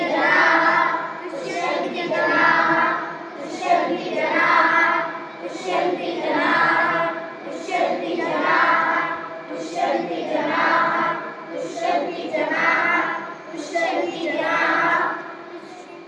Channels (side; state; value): both; identical; correlation 1.00